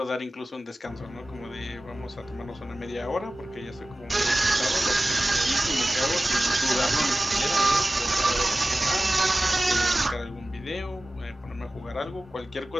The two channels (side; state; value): both; normal; correlation 0.96